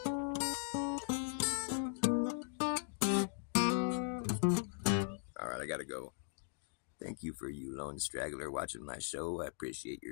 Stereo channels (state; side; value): silent; right; digital silence